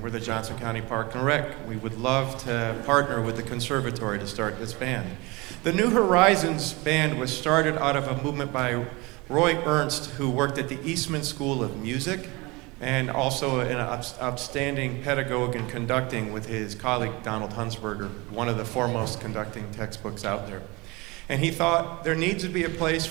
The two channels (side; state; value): left; quieter; 24.8 dB